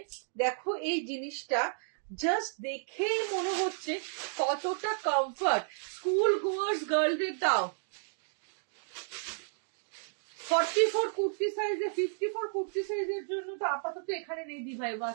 দেখো এই জিনিসটা জাস্ট দেখেই মনে হচ্ছে কতটা কমফর্ট। স্কুল গোয়ার্স গার্লদের দাও। 44 কুর্তি সাইজে, 54 কুর্তি সাইজের জন্য তো আপাতত এখানে নেই দি ভাই,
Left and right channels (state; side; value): silent; left; digital silence